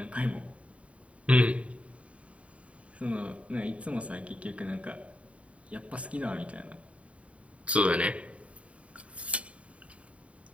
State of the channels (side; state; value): left; late; 0.064 ms